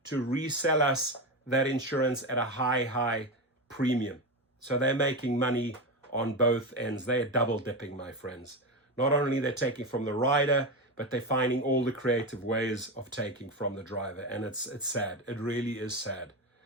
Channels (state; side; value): normal; both; correlation 0.17